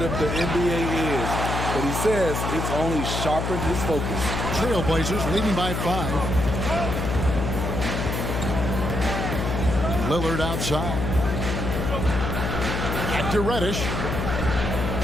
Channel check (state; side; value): noise; left; hum, 1 dB below the sound